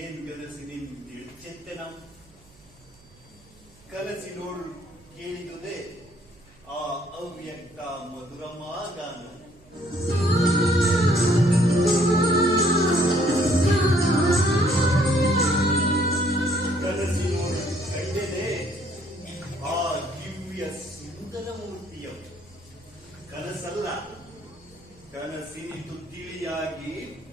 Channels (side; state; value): right; noise; hum, 28 dB below the sound